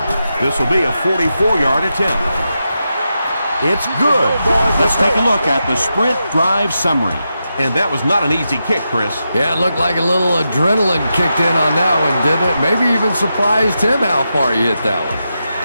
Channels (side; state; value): both; inverted; correlation -0.87